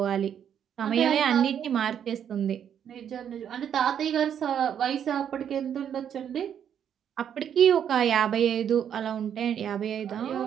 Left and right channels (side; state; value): left; quieter; 8.9 dB